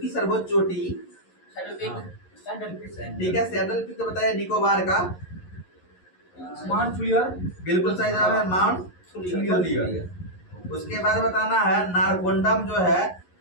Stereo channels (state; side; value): late; right; 11 ms